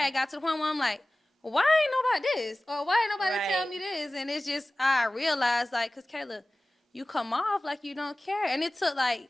got to the point where I'm like, why ain't nobody this? Or why ain't nobody tell me this? And it's just, I realized, like, because Kayla, you come off like you don't care. And it took, like,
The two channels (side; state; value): both; normal; correlation 0.97